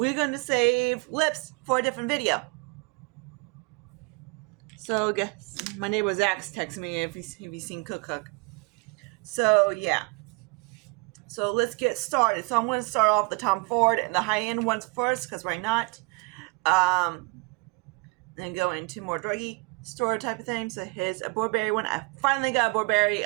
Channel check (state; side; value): quieter; left; 29.7 dB